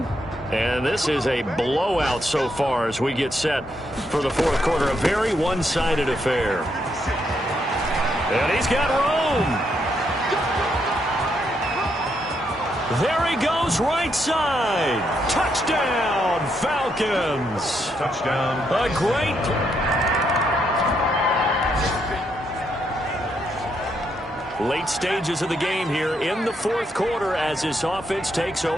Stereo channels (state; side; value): normal; both; correlation 0.77